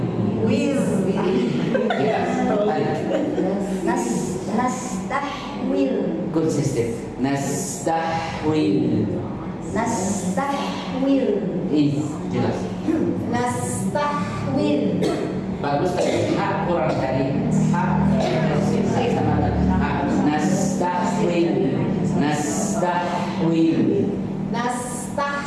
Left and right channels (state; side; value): identical; both; correlation 1.00